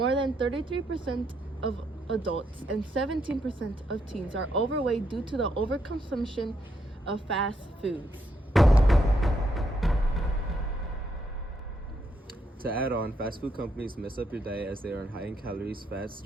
than 33% of adults and 17% of teens are overweight due to the overconsumption of fast foods. To add on, fast food companies mess up your diet as they are high in calories, fats,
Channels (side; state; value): both; normal; correlation 0.77